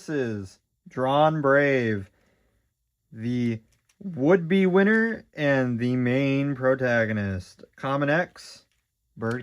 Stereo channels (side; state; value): both; identical; correlation 1.00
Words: DranBrave, the would-be winner and the main protagonist. Common X,